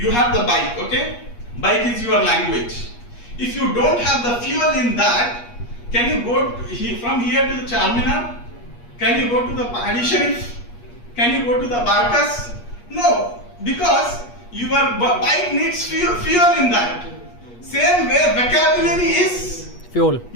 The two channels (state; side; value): late; right; 8.4 ms